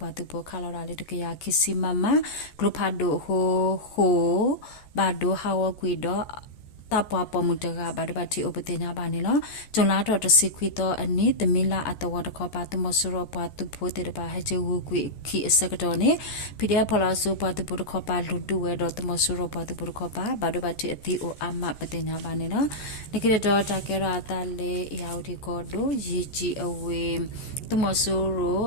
tu po khalora le kya kisi mama glopado ho ba do hawo kwi do tapwa pomutaga badabati opatenya banelo jonla to to sikwito ani tamila atawa to khopa to mosuro pa tu phote de ba haje wu kwi ki asakado ne pidya phala so pa tu pho khopa ludu we do to mosuro pa tu pho khopa badabati ati o amma patenya banelo nikire do ta kera atale yaudi kodo yiji awe to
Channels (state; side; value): late; right; 14 ms